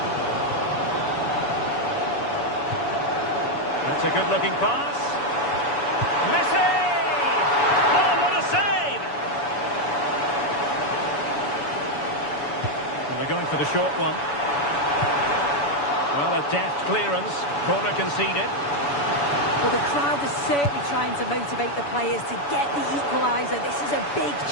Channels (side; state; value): right; late; 7.0 ms